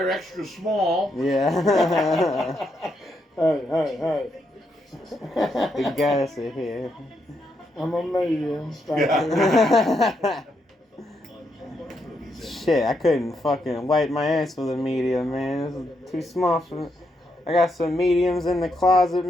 extra small. Yeah. Hey. You gotta sit here. I'm a medium. Shit, I couldn't fucking wipe my ass with a medium, man. It's too small for me. I got some mediums in the closet,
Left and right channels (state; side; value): normal; both; correlation 0.79